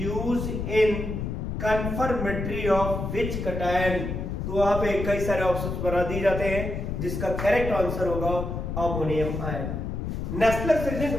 in confirmatory of which cation. तो वहां पे कई सारे ऑप्शंस बना दिए जाते हैं जिसका करेक्ट आंसर होगा अमोनियम आयन। नेस्लर्स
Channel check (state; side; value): noise; left; rumble, 4 dB below the sound